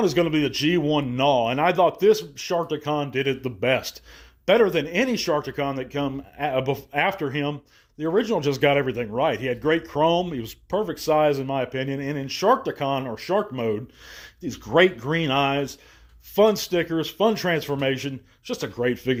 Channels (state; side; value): identical; both; correlation 1.00